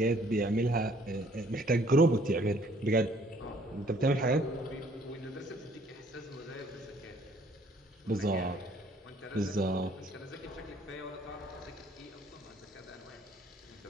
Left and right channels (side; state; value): both; normal; correlation 0.60